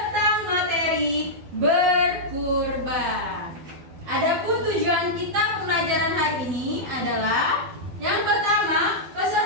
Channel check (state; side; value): late; left; 12 ms